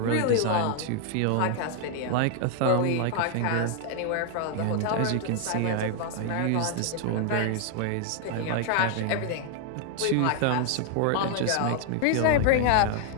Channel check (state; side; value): different; both; correlation 0.00